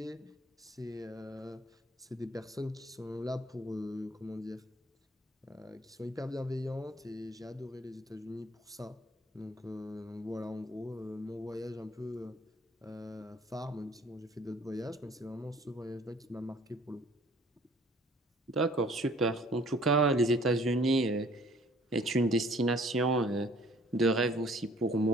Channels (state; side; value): normal; both; correlation 0.56